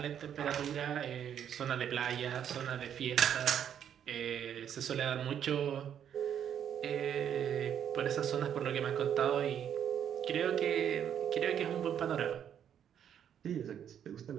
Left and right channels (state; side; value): quieter; left; 9.1 dB